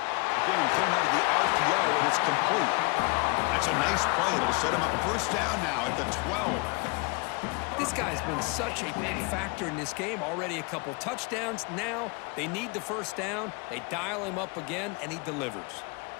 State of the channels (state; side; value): quieter; right; 30.2 dB